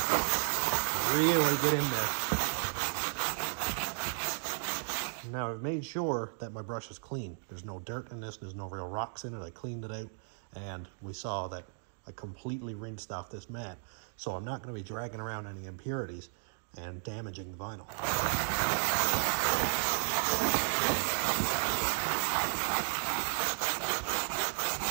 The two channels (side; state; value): left; silent; digital silence